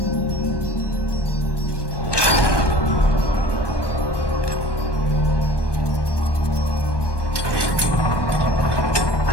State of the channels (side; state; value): right; late; 1.2 ms